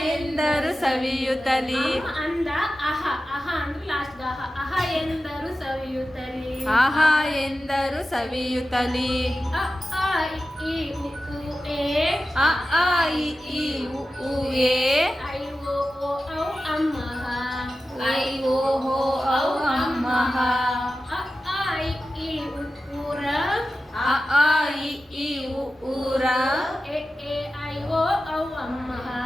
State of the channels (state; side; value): normal; both; correlation 0.93